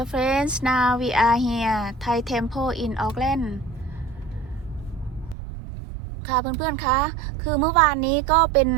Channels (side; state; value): left; drops out; at 5.4 s